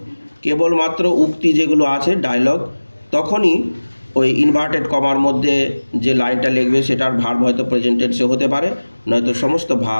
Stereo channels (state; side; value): inverted; both; correlation -1.00